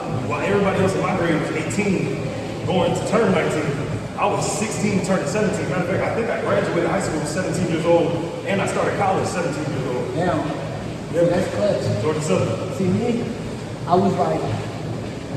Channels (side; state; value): both; identical; correlation 1.00